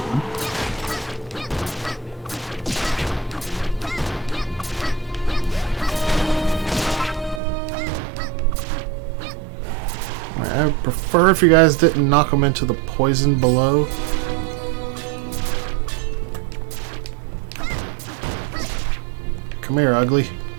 I would prefer if you guys didn't knock them into the poison below. Come here, ugly.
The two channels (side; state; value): left; drops out; at 7.4 s